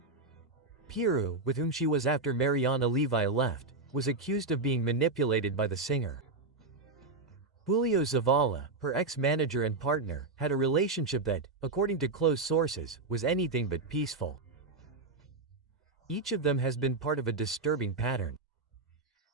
Piru, with whom she was after Mariana Levi left, was accused of being manipulated by the singer. Julio Zavala, her ex-manager and partner, had a relationship that, according to close sources, was anything but peaceful. Each of them has been part of a disturbing pattern.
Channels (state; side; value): quieter; left; 3.5 dB